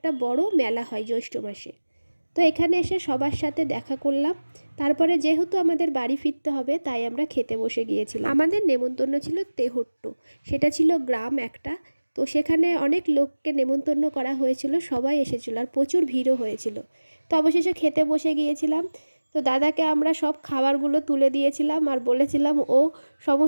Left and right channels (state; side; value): inverted; both; correlation -1.00